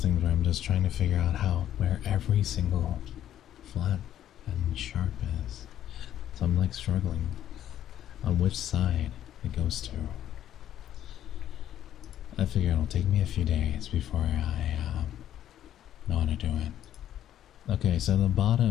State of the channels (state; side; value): quieter; right; 11.3 dB